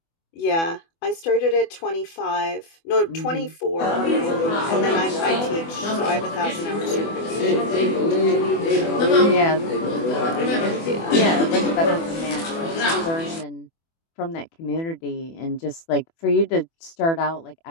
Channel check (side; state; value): right; late; 24 ms